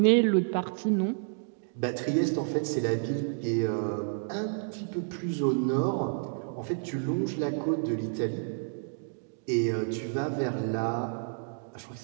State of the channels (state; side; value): silent; left; 58 dB below the other